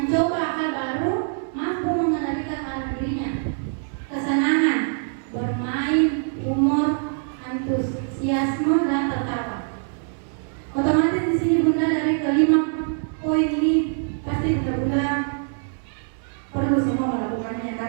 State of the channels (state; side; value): silent; left; 63 dB below the other